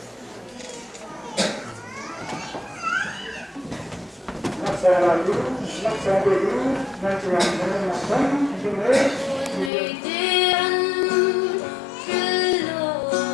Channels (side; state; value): right; drops out; at 9.7 s